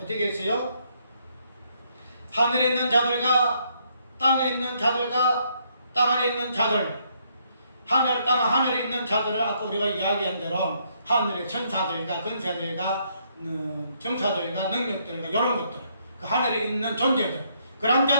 어떻게 했어요? 하늘에 있는 자들과 땅에 있는 자들과 땅 아래에 있는 자들 하늘에 있는 자들을 아까 우리가 이야기한 대로 하늘의 천사들과 권세들과 정사들과 능력들과 이런 것들 그 하늘에 있는 존재들 그런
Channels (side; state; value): both; inverted; correlation -0.71